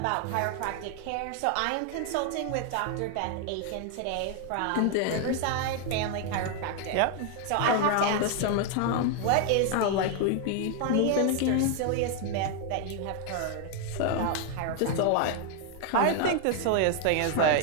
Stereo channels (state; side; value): different; both; correlation 0.00